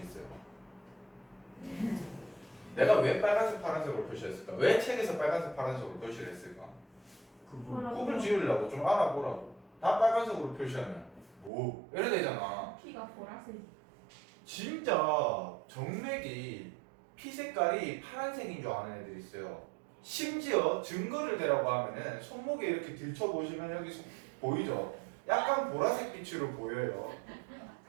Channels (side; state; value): left; drops out; at 11.5 s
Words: 있어요. 내가 왜 빨간색, 파란색으로 표시했을까? 왜 책에서 빨간색, 파란색으로 표시를 했을까? 구분 지으려고 좀 알아보라고. 다 빨간색으로 표시하면 뭐 이래 되잖아. 피가 보라색. 진짜 정맥이 피 색깔이 파란색인 줄 아는 애들이 있어요. 심지어 증거를 대라고 하면은 손목에 이렇게 들춰보시면 여기 보이죠? 약간 보라색 빛으로 보여요.